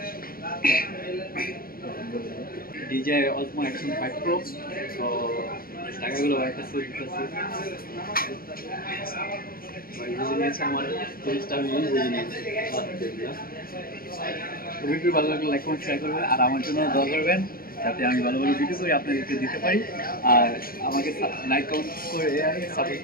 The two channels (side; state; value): right; late; 0.43 ms